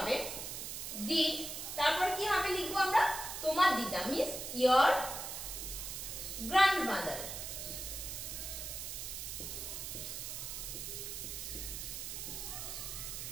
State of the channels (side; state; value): right; noise; hiss, 6 dB below the sound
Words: did তারপর কি হবে লিখবো আমরা, তোমার দিদা means your grandmother.